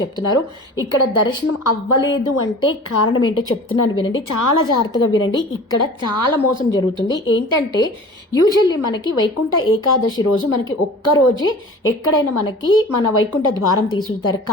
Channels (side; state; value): both; normal; correlation 0.41